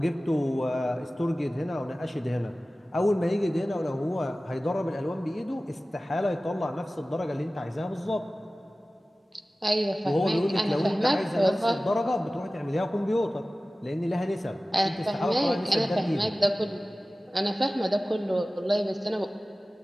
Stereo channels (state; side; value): normal; both; correlation 0.97